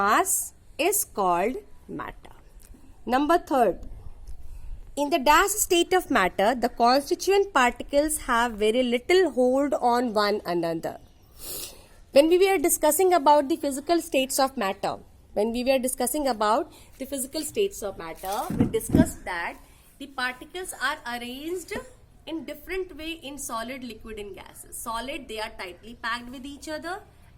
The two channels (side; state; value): both; identical; correlation 1.00